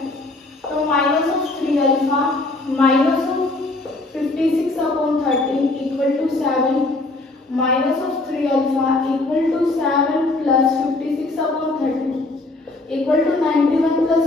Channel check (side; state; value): right; quieter; 3.0 dB